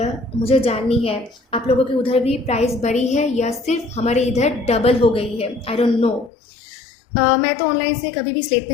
मुझे जाननी है। आप लोगों के उधर भी प्राइस बढ़ी है या सिर्फ हमारे इधर डबल हो गई है, आई डोंट नो। मैं तो ऑनलाइन से कभी भी स्लेट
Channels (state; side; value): drops out; right; at 6.3 s